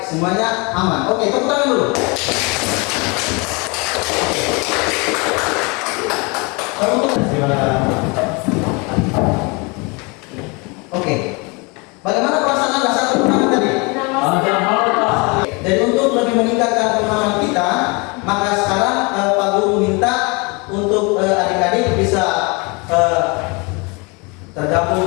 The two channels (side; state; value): right; quieter; 29.3 dB